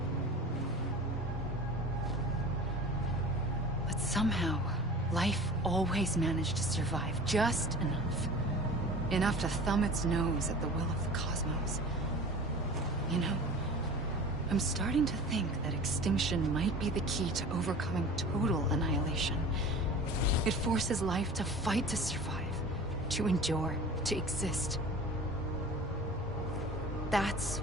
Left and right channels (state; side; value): noise; right; rumble, 16 dB below the sound